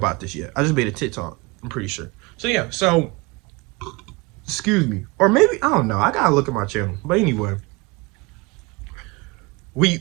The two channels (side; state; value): left; quieter; 25.2 dB